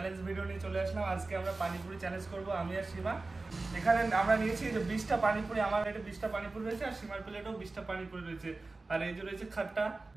ভিডিও নিয়ে চলে আসলাম। আজকে আমরা পানিপুরি চ্যালেঞ্জ করব, আমি আর সীমা। এখানে আমরা নিয়েছি যে 20টা পানিপুরি, আমার প্লেটে 20টা পানিপুরি রয়েছে আর সীমার প্লেটেও 20টা পানিপুরি রয়েছে। আর এই যে রয়েছে খাট্টা,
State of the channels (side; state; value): left; quieter; 3.4 dB